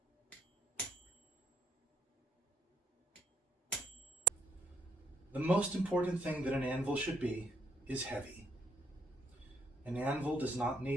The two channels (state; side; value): normal; both; correlation 0.71